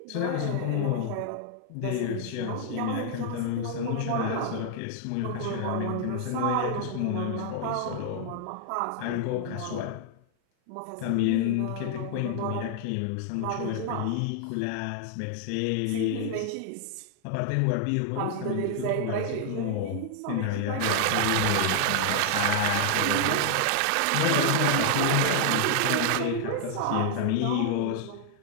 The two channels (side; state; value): both; different; correlation 0.00